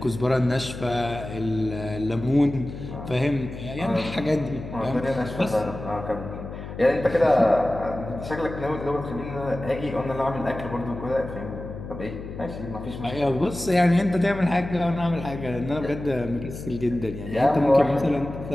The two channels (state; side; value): noise; left; hum, 10 dB below the sound